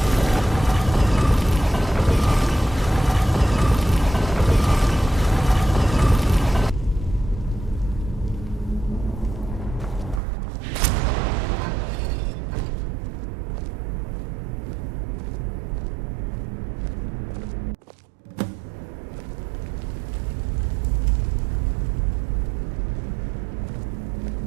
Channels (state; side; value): drops out; left; at 10.2 s